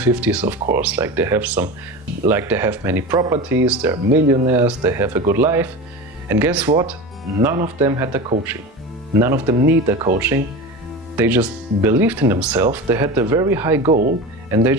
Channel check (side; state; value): both; normal; correlation 0.28